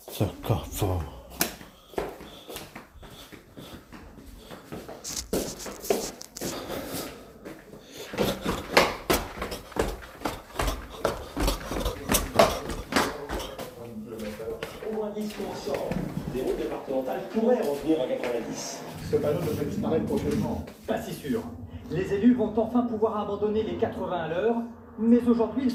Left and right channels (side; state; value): both; identical; correlation 1.00